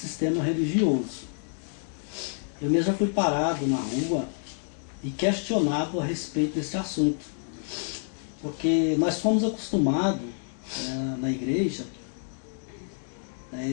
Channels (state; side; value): silent; right; digital silence